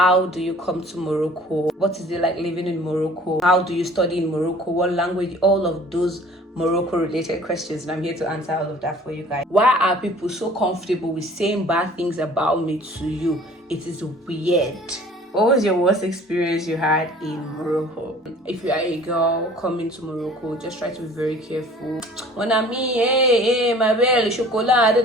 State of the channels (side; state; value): both; normal; correlation 0.50